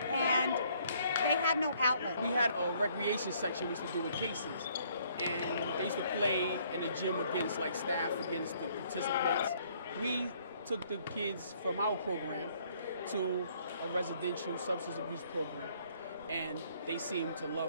and they have no outlet. We had a recreation section we used to do with cases. And they used to play in the gym against staff, against the participants. We took the kids from our program to a residential substance abuse program, and they seemed to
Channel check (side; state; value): both; inverted; correlation -0.64